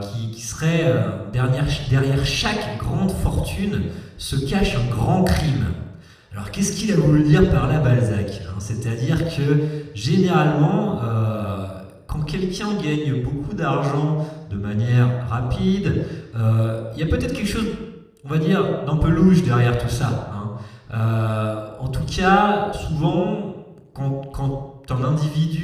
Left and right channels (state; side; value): identical; both; correlation 1.00